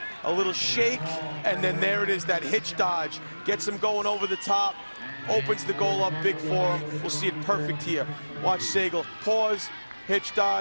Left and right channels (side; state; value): both; inverted; correlation -1.00